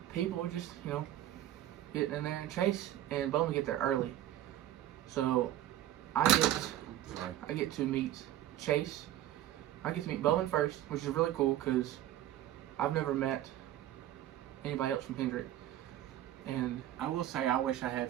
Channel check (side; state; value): left; quieter; 13.0 dB